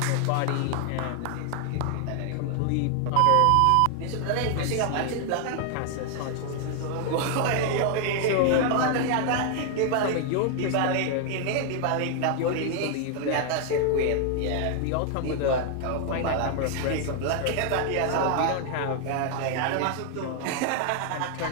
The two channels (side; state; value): both; different; correlation 0.00